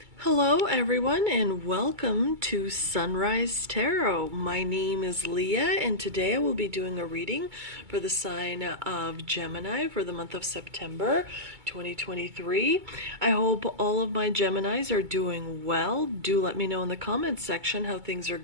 Hello everyone and welcome to Sunrise Tarot. My name is Leah and today I will be doing a reading for the sign of Gemini for the month of September 2023. I hope all of my Geminis are doing well. Do let me know in the comments section how things are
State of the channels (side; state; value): left; late; 2.2 ms